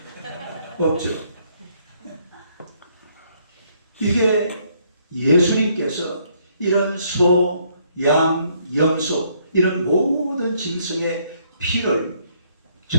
없죠. 이게 예수님께서 이런 소, 양, 염소 이런 모든 짐승의 피를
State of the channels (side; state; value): both; inverted; correlation -0.69